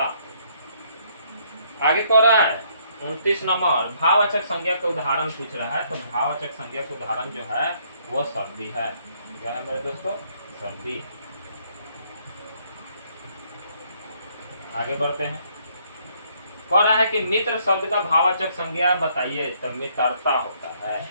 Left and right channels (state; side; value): inverted; both; correlation -0.68